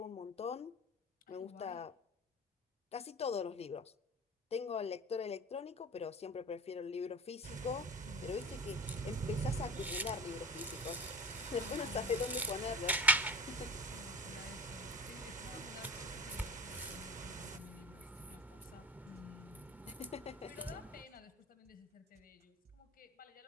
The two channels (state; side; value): normal; both; correlation 0.38